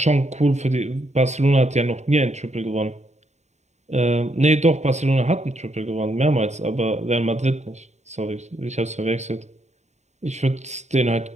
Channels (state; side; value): late; left; 0.33 ms